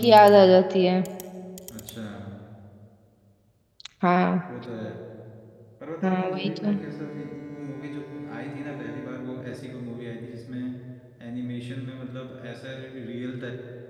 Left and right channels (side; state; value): both; identical; correlation 1.00